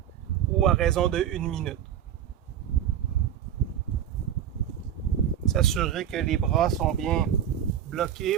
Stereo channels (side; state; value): left; quieter; 9.8 dB